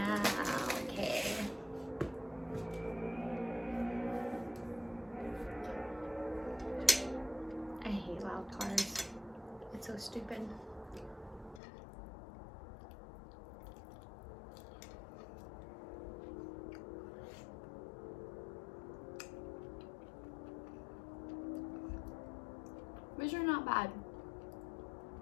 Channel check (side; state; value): right; drops out; at 11.6 s